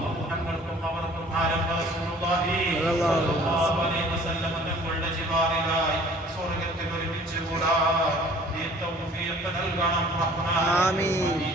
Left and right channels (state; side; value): normal; both; correlation 0.52